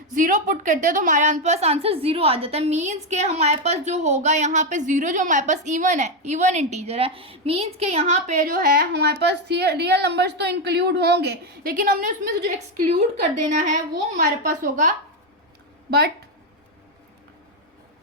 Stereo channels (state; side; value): normal; both; correlation 0.06